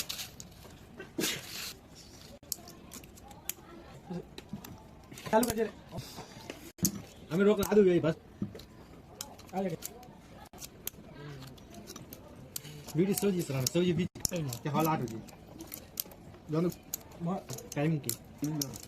चालू कर हमें रोक ला दो बस वीडियो सोजी सर सोजी भी क्या हाल आ रही है दोनों टाइम की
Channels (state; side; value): identical; both; correlation 1.00